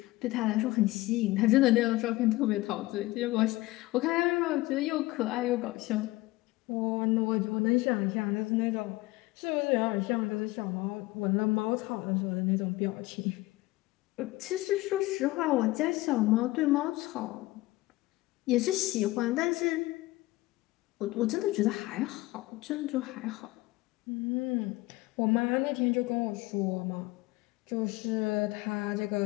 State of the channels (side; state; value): right; quieter; 19.5 dB